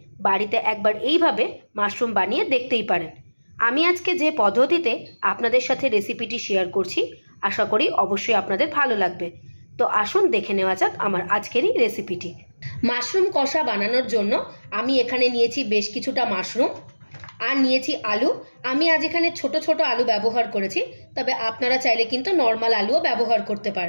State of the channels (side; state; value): both; inverted; correlation -1.00